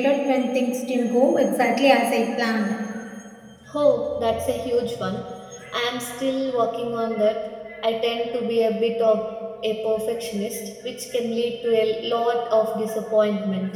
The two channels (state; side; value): identical; both; correlation 1.00